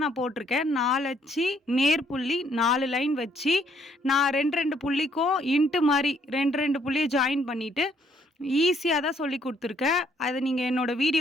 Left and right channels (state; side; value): normal; both; correlation 0.67